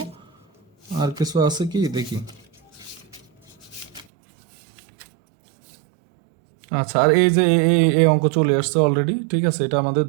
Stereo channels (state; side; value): drops out; left; at 4.0 s